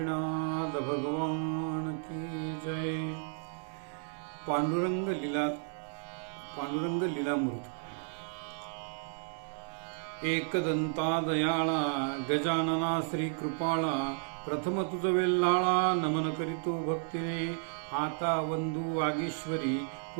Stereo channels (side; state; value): left; silent; 56 dB below the other